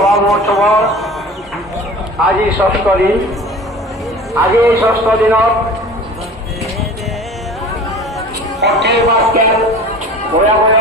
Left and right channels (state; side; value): normal; both; correlation 0.40